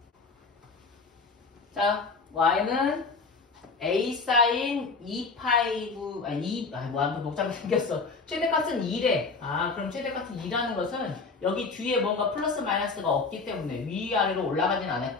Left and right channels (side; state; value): right; quieter; 4.3 dB